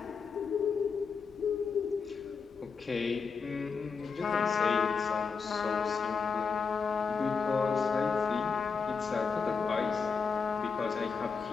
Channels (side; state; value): right; quieter; 5.5 dB